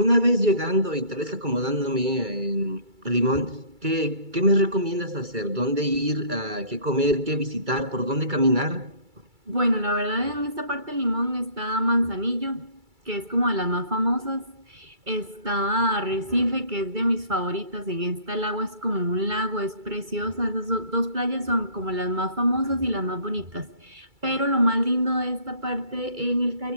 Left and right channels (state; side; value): late; left; 2.3 ms